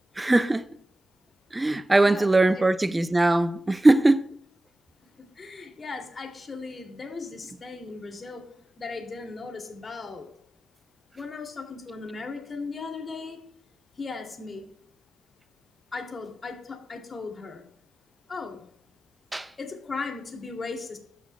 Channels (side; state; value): both; normal; correlation 0.96